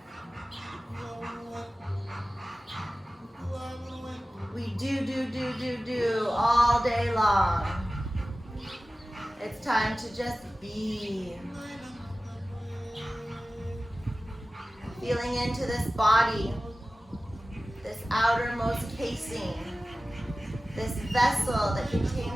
We do all day long. It's time to just be. Feeling into this body, this outermost casing, this vessel that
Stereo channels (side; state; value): both; normal; correlation 0.96